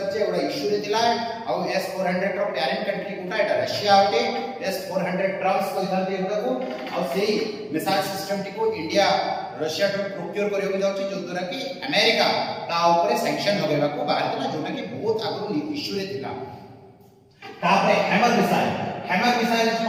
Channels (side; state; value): both; identical; correlation 1.00